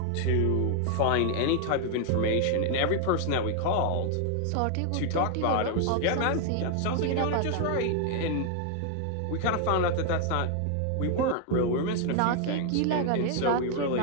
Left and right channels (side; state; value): both; different; correlation 0.00